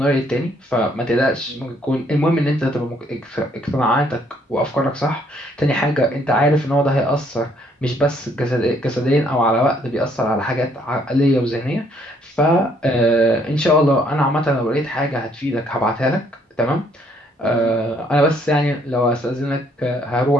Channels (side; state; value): both; normal; correlation 0.66